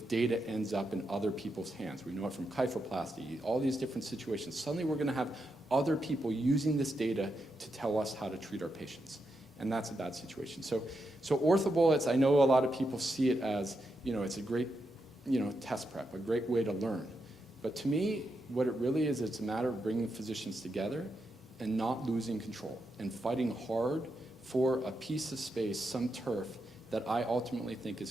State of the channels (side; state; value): both; normal; correlation 0.84